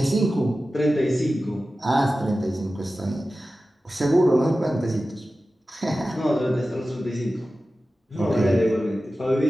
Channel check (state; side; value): normal; both; correlation 0.95